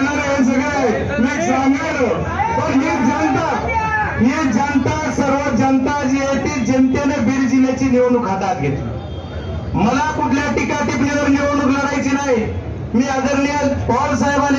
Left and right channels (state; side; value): identical; both; correlation 1.00